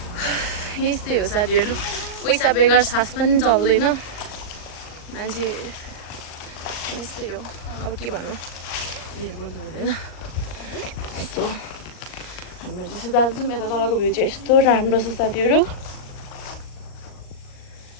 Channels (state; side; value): late; right; 38 ms